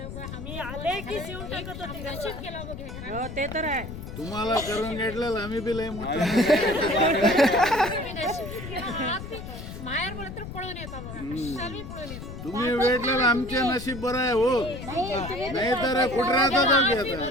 आम्ही आले की शिवून टाकत होते. नशीब केला बघ हे ते तर आहे. तुम्हाला करून घेतलेलं आम्ही बी लय मोठं. नशीब केला. माहेर बोलत तर पळून येतो बघा कशाला मी पळून येतो तुम्ही भेटलेलं आमचे नशीब बरं आहे हो, नाही तर कुठं राहतात आम्ही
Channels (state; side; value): noise; left; rumble, 10 dB below the sound